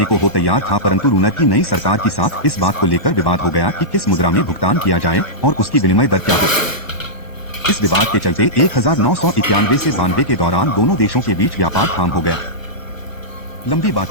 को हो तैयार था, परंतु रूनर की नई सरकार के साथ इस बात को लेकर विवाद हो गया कि किस मुद्रा में भुगतान किया जाए और उसकी विनिमय दर क्या हो। इस विवाद के चलते 1991 से 92 के दौरान दोनों देशों के बीच व्यापार ठाम हो गया। लंबी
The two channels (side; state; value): right; late; 1.1 ms